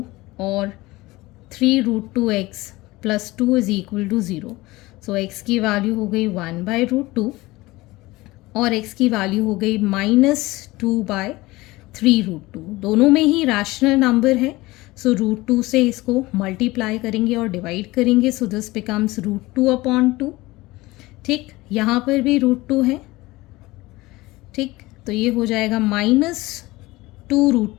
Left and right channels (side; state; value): right; quieter; 20.1 dB